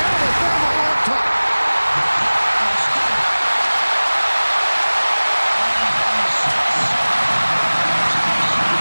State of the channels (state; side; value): inverted; both; correlation -1.00